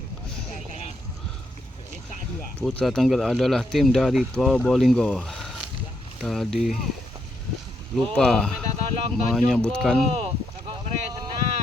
Putra Tengger adalah tim dari Probolinggo. Tadi lupa menyebutkan.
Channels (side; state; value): both; normal; correlation 0.78